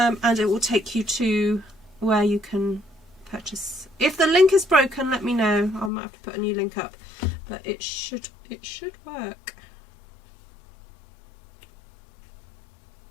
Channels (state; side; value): drops out; right; at 5.9 s